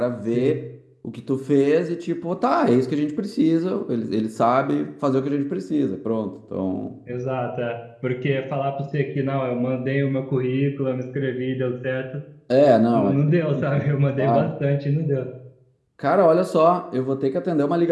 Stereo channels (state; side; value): identical; both; correlation 1.00